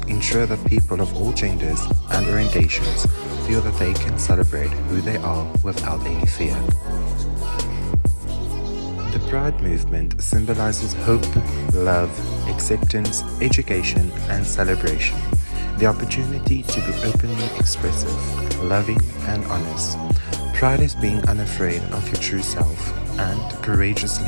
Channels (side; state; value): both; inverted; correlation -1.00